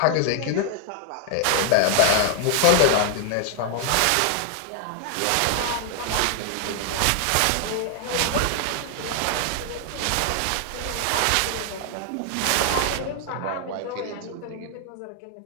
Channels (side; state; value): both; different; correlation 0.00